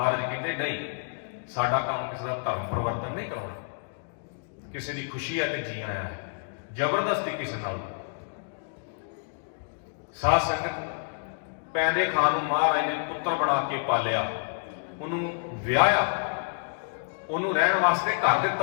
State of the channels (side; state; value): right; silent; digital silence